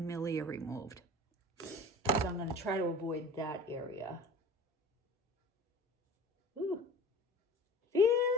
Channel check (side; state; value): both; normal; correlation 0.39